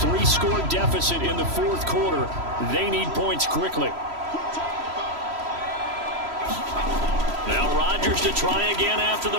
deficit in the 4th quarter. They need points quickly. Now Rodgers to try again after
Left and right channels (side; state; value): left; late; 3.0 ms